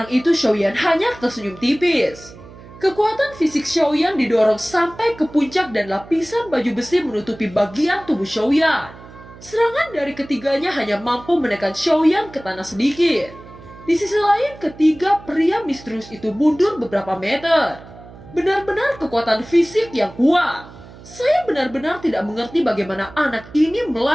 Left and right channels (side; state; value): right; noise; hum, 19 dB below the sound